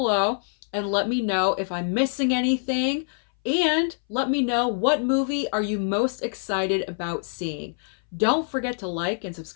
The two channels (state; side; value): silent; right; 59 dB below the other